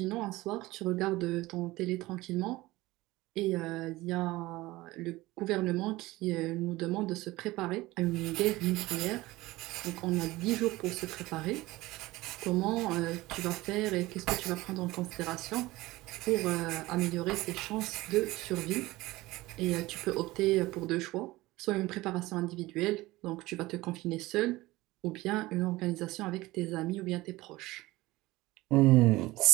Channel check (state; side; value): quieter; left; 19.2 dB